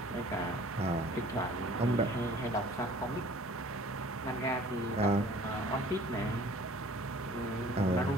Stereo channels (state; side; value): normal; both; correlation 0.51